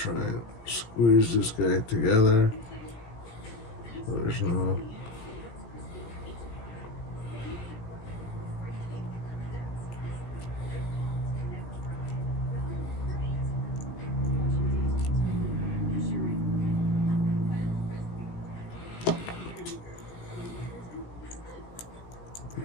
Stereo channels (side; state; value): right; late; 17 ms